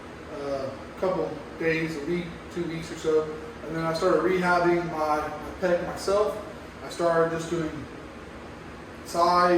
a couple days, a week, 2 weeks or so, and then I started rehabbing my pec myself. I started just doing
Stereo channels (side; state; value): both; identical; correlation 1.00